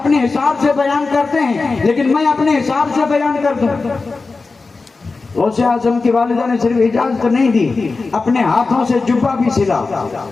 حساب سے بیان کرتے ہیں, لیکن میں اپنے حساب سے بیان کر دوں. غوث اعظم کی والدہ نے صرف اجازت نہیں دی, اپنے ہاتھوں سے جبہ بھی سلا.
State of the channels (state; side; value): quieter; right; 4.0 dB